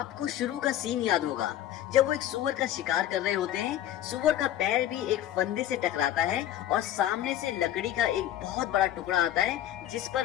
शुरू का सीन याद होगा जब वो एक सुअर का शिकार कर रहे होते हैं। सुअर का पैर भी एक फंदे से टकराता है और सामने से लकड़ी का एक बहुत बड़ा टुकड़ा आता है जिस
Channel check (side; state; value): right; quieter; 12.3 dB